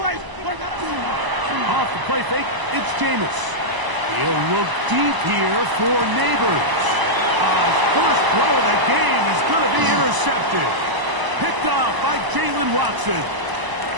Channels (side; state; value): left; late; 1.0 ms